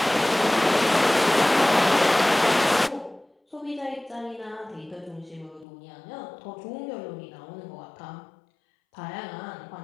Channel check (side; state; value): right; drops out; at 5.7 s